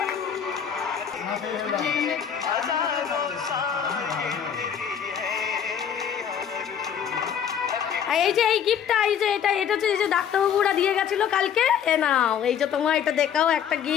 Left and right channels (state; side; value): quieter; right; 8.3 dB